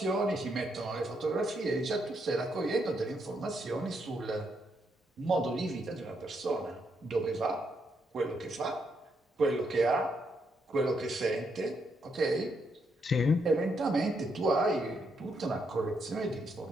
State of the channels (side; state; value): both; normal; correlation 0.77